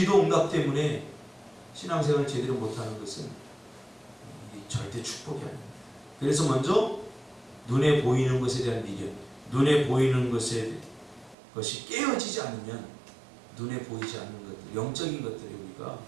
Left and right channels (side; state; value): left; drops out; at 11.4 s